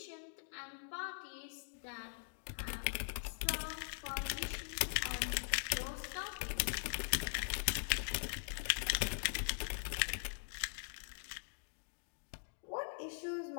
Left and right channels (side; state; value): right; silent; digital silence